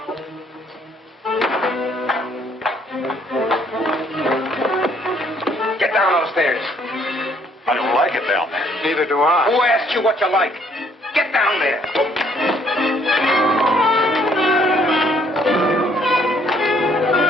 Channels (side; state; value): both; normal; correlation 0.64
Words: like it down there. Neither do I. Who asked you what you like? Get down there.